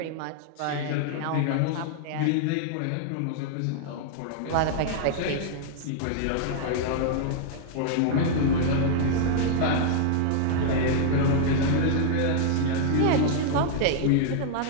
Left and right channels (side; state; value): both; different; correlation -0.01